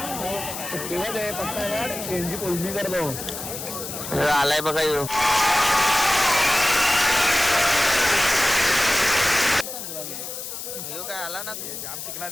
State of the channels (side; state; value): left; noise; hiss, 8 dB below the sound